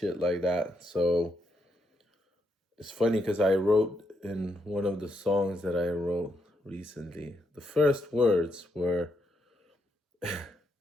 like that. So it's funny because I wrote in one of the songs that I wrote recently, the first words were,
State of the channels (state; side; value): normal; both; correlation 0.79